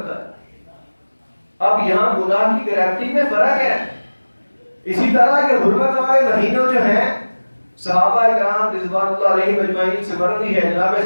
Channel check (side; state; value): both; inverted; correlation -1.00